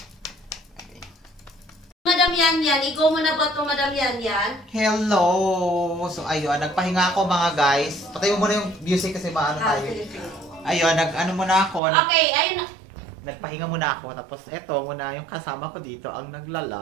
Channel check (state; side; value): drops out; left; at 11.8 s